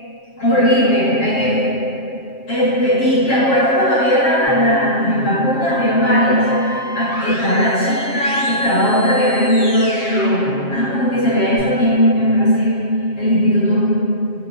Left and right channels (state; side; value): late; right; 7.5 ms